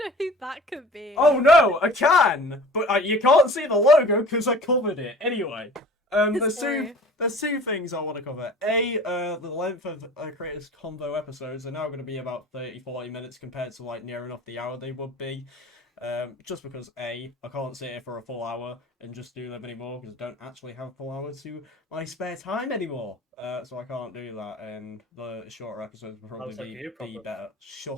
who that could be. Oh no, a can. But you can't see the logo because I covered it. Anyway, there's two things I want to cover. The length of Creators Convo episodes are now going to be about 30-40 minutes compared to like near enough the hour they would be. Just because I can't sit here for a full hour and just do them anymore because I don't actually have a full hour to my spare time anymore. So I can't do that, and the shorter episodes will probably be better.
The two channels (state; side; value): normal; both; correlation 0.44